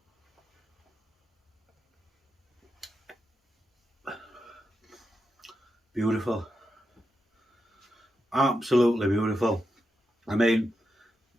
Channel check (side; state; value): both; normal; correlation 0.87